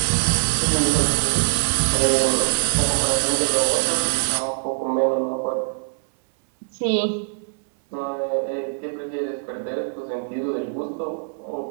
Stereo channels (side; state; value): left; silent; 64 dB below the other